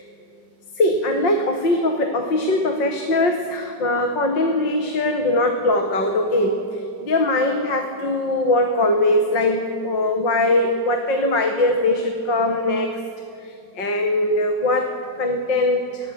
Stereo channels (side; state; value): right; late; 5.5 ms